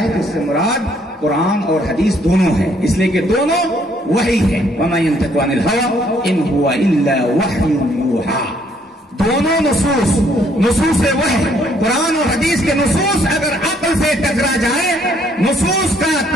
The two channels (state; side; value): normal; both; correlation 0.66